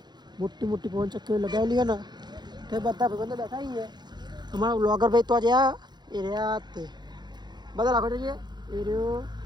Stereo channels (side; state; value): left; late; 0.21 ms